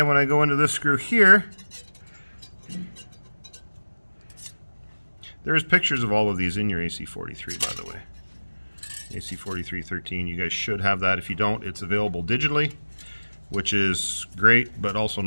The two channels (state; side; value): inverted; both; correlation -1.00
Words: when I go into this screw here, there's pictures of all of these in your AC43, by the way. AC4313, you guys should have that. If you don't, it's available digitally, which is great, but also